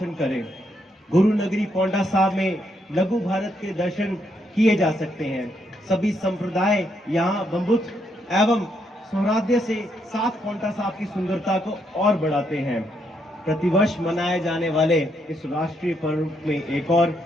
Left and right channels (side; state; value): both; normal; correlation 0.76